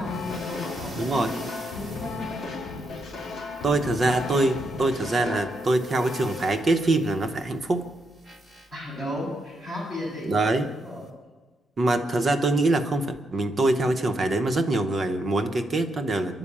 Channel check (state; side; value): normal; both; correlation 0.80